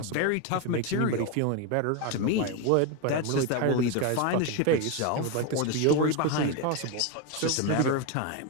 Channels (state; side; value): different; both; correlation 0.02